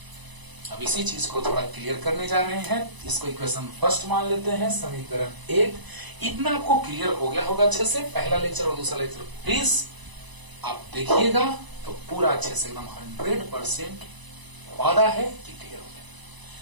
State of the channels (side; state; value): left; late; 1.0 ms